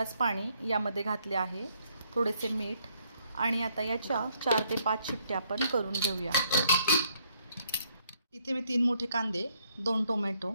पाणी यामध्ये घातले आहे, थोडेसे मीठ आणि आता याच्या 4 ते 5 शिट्ट्या आपण करून घेऊया। इथे मी 3 मोठे कांदे, 2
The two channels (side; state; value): both; inverted; correlation -0.70